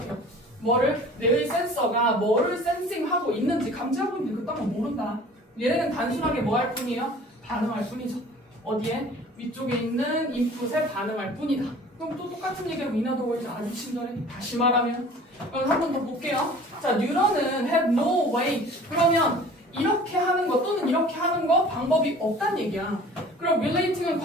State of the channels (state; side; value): normal; both; correlation 0.46